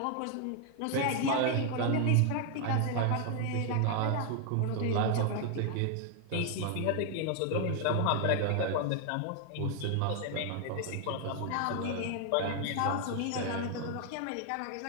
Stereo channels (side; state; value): both; different; correlation 0.00